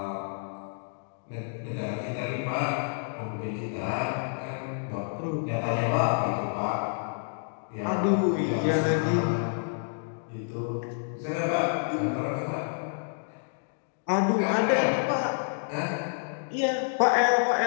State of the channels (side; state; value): right; silent; digital silence